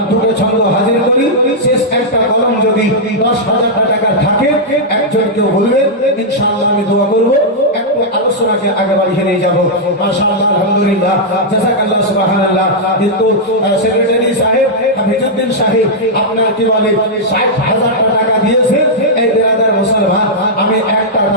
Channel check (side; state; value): both; normal; correlation -0.07